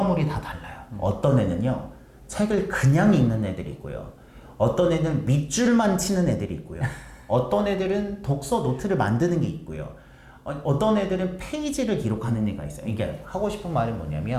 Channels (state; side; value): identical; both; correlation 1.00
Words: 다 달라요. 어떤 애는요, 책을 그냥 읽는 애들이 있고요. 어떤 애는 밑줄만 치는 애들이 있고요. 어떤 애들은 독서 노트를 만드는 게 있고요. 어떤 애들은 페이지를 기록하는 애가 있어요. 이게 하고 싶은 말은